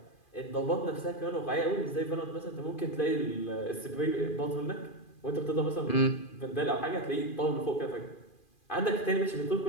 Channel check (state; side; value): late; right; 2.4 ms